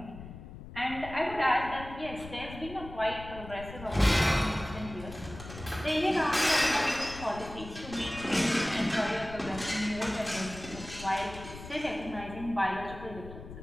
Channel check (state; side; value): noise; left; rumble, 13 dB below the sound